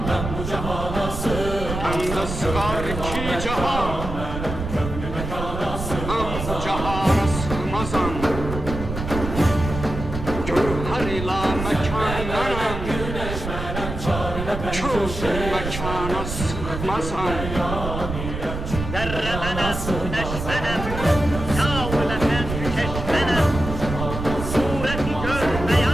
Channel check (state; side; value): noise; right; rumble, 6 dB below the sound